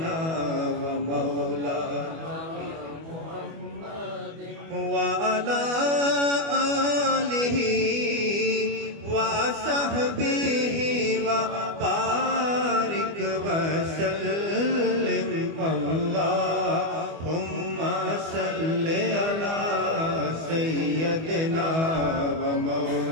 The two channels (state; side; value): late; left; 25 ms